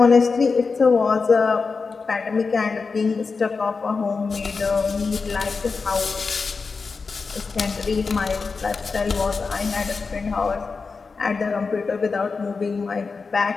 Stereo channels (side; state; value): right; quieter; 4.6 dB